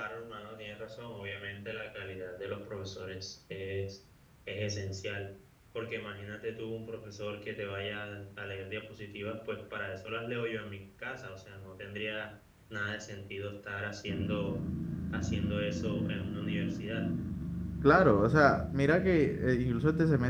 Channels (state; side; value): identical; both; correlation 1.00